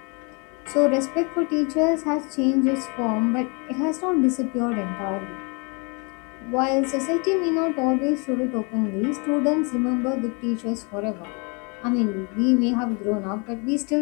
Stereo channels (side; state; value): right; quieter; 33.0 dB